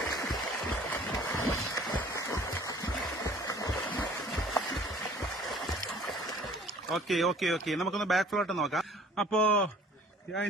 ഓക്കെ. നമുക്കൊന്ന് ബാക്ക് ഫ്ലോട്ട് നോക്കാം. അപ്പോ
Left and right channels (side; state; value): both; normal; correlation 0.52